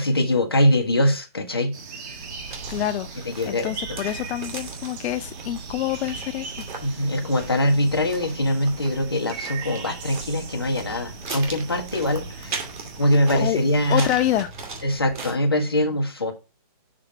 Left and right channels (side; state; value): both; inverted; correlation -0.60